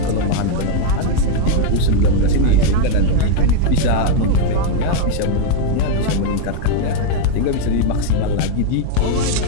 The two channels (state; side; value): different; both; correlation 0.01